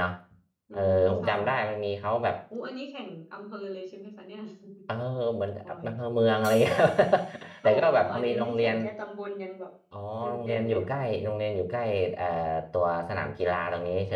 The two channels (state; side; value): identical; both; correlation 1.00